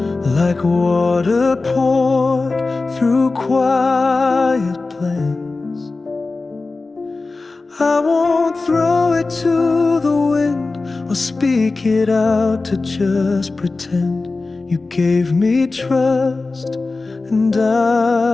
like water poured through quiet plans. I won't throw it to the wind or speak it out to just pretend. You gave me trust and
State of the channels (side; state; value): right; quieter; 3.6 dB